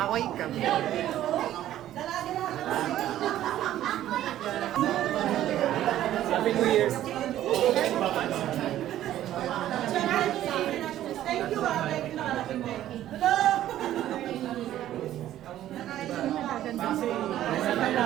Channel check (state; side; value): quieter; left; 12.7 dB